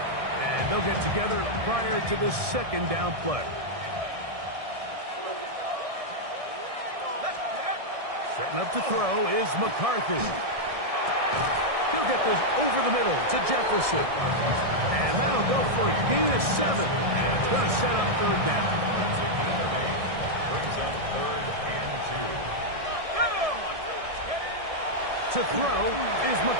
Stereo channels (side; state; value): left; late; 1.6 ms